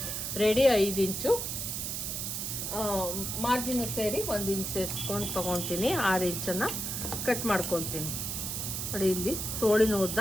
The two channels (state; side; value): noise; right; hiss, 3 dB below the sound